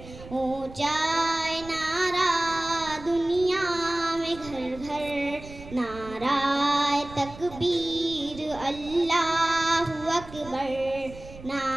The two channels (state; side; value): noise; right; rumble, 16 dB below the sound